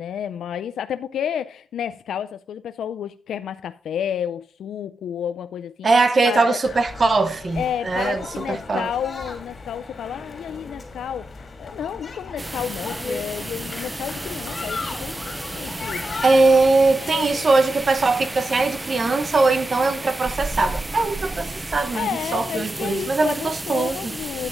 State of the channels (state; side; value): normal; both; correlation 0.87